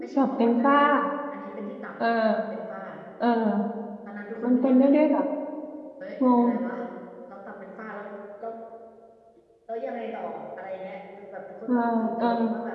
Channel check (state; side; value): identical; both; correlation 1.00